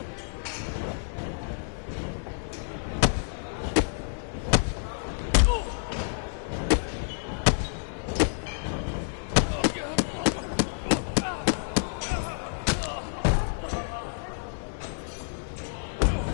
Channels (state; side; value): silent; right; 59 dB below the other